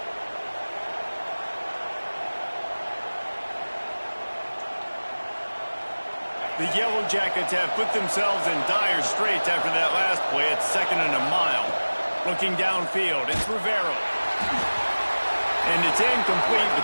The Yellow Jackets have put themselves in dire straits after that last play. It's 2nd and a mile. Looking downfield, it's Rivero. And it's incomplete,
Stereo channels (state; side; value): inverted; both; correlation -1.00